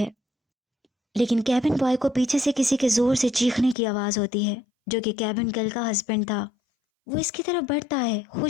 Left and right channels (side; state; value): right; drops out; at 3.8 s